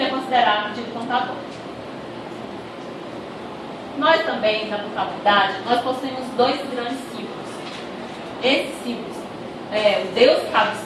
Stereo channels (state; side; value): identical; both; correlation 1.00